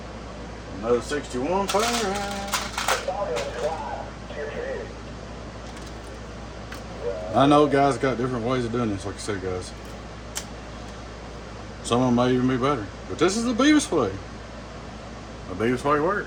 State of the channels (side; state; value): both; identical; correlation 1.00